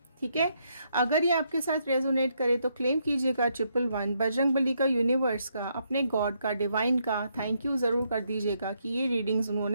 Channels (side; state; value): both; inverted; correlation -0.76